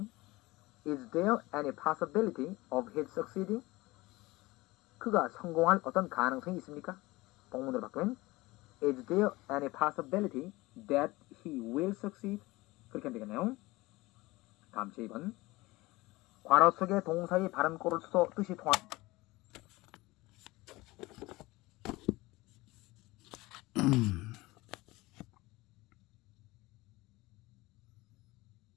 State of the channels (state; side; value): quieter; right; 20.9 dB